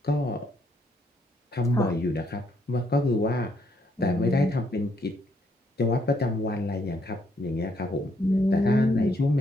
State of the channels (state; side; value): normal; both; correlation 0.72